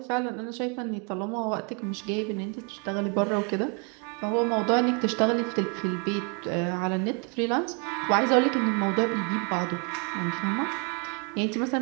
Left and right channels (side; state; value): left; quieter; 34.1 dB